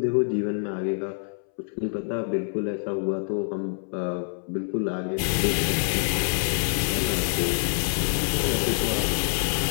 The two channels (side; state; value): right; silent; 61 dB below the other